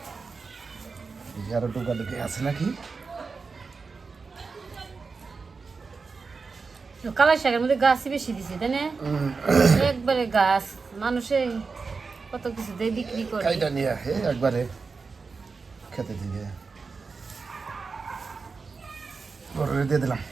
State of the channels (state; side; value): quieter; left; 4.6 dB